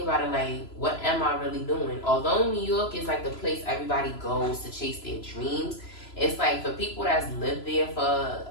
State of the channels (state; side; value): late; right; 3.0 ms